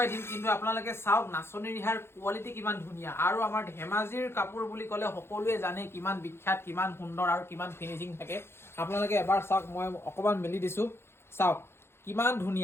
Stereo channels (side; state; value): right; late; 0.12 ms